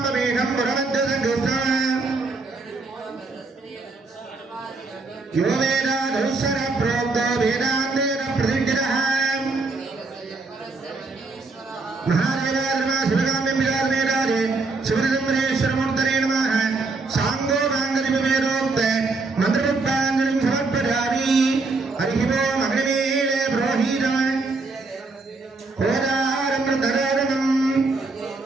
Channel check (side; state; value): left; quieter; 3.7 dB